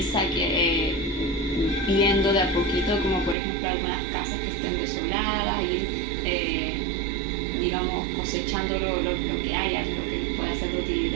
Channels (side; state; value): left; drops out; at 3.4 s